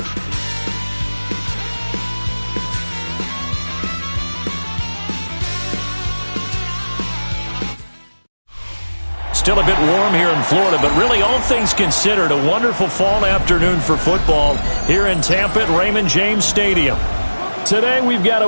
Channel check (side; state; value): both; inverted; correlation -1.00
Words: Still a bit warm here in Florida, but really all things considered, a wonderful fall afternoon for football here in Tampa at Raymond James Stadium. Today we've got a